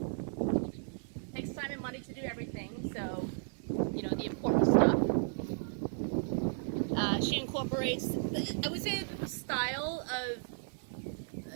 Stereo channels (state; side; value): silent; left; digital silence